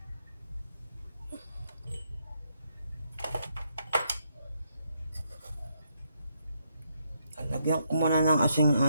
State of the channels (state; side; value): inverted; both; correlation -0.77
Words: Lagyan ko muna ng asin